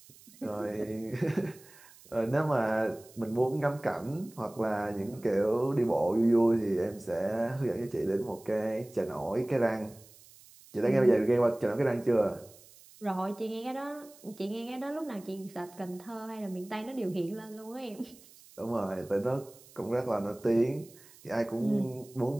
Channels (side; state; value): right; noise; hiss, 23 dB below the sound